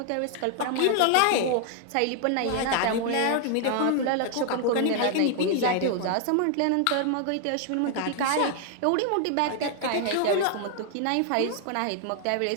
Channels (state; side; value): different; both; correlation 0.00